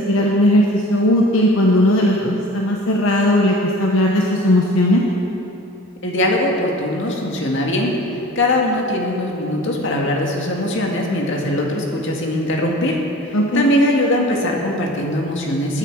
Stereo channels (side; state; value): both; normal; correlation 0.43